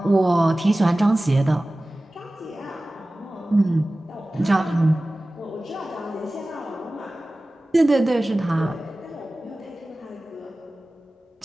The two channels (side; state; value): both; normal; correlation 0.97